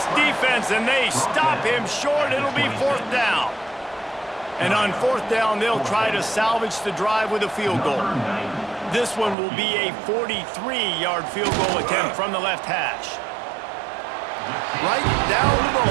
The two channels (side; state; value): left; drops out; at 9.3 s